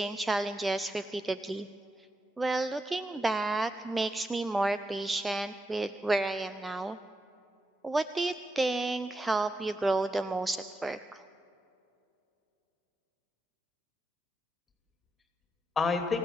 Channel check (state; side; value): normal; both; correlation 0.86